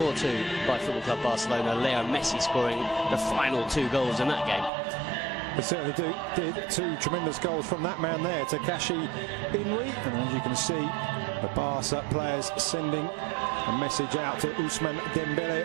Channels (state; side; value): drops out; left; at 4.7 s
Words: 4-2 by Football Club Barcelona. Leo Messi scoring the final 2 goals in that game. They certainly did 2 tremendous goals from that man there, Takashi Inui. And as you can see, the Barca players sending a message out to Ousmane